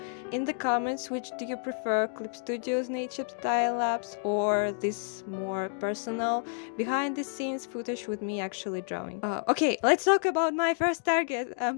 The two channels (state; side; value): silent; right; 58 dB below the other